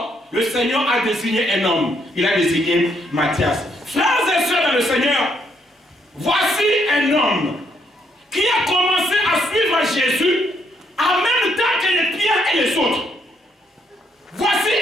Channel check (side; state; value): both; normal; correlation 0.72